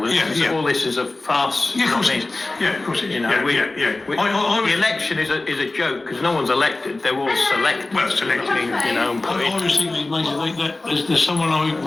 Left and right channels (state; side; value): quieter; right; 3.1 dB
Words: this is a farce. Yeah, of course it is. Yeah, of course it is. You know, the election is a joke because no one's elected; they're all selected. Well, selected. You know, and I always think these Masons, there's someone I